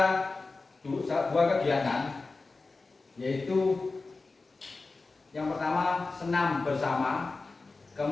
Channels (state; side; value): quieter; right; 3.8 dB